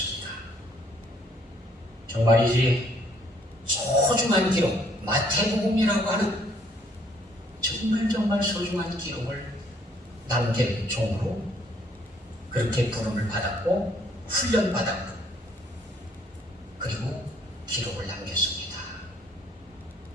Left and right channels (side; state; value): both; normal; correlation 0.65